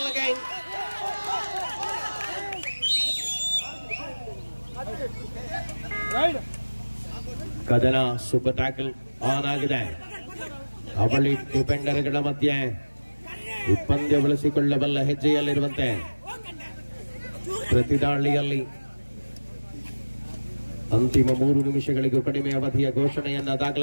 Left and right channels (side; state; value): both; inverted; correlation -1.00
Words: again. ಕದನ ಸೂಪರ್ ಟ್ಯಾಕಲ್ ಆನ್ ಆಗಿದೆ. ಅವಳಿ ಡಿಫೆಂಡರ್ಗಳ ಮಧ್ಯೆ ಪಂದ್ಯ ಬಳಸಿಕೊಳ್ಳಬಲ್ಲ ಹೆಜ್ಜೆಯಲ್ಲಿರುವಂತೆ ಪ್ರತಿದಾಳಿಯಲ್ಲಿ ಅಂತಿಮ 3 ನಿಮಿಷಗಳಿಗೂ ಕಡಿಮೆ ಅವಧಿಯ ಘೋಷಣೆಯನ್ನ